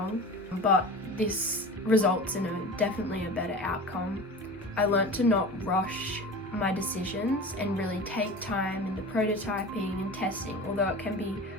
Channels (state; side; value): normal; both; correlation 0.35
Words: but this results in definitely a better outcome. I learnt to not rush my decisions and really take time in the prototyping and testing, although it can be